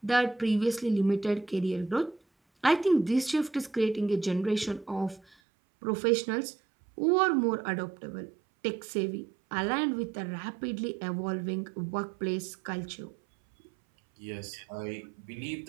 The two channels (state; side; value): drops out; left; at 5.4 s